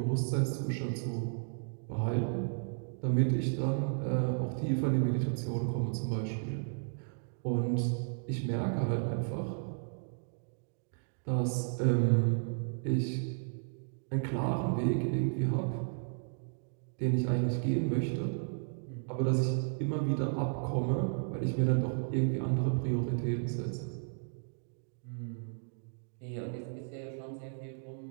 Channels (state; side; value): silent; left; digital silence